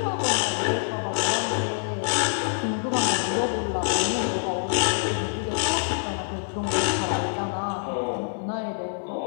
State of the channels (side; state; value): right; silent; 61 dB below the other